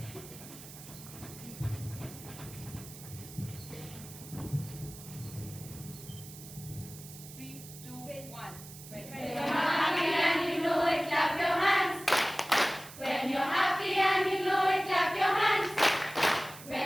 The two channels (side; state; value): right; noise; hiss, 16 dB below the sound